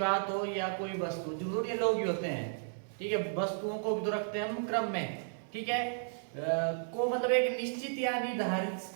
हो या कोई वस्तु, जरूर ये लोग ही होते हैं, ठीक है। वस्तुओं को भी तो रखते हैं हम क्रम में, ठीक है। को मतलब एक निश्चित या निर्धारित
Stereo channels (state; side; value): silent; left; 55 dB below the other